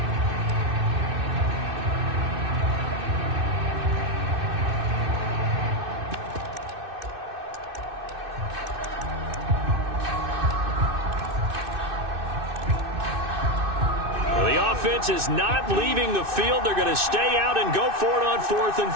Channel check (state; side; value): late; left; 2.6 ms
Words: Offense is not leaving the field. They're going to stay out and go for it on 4th and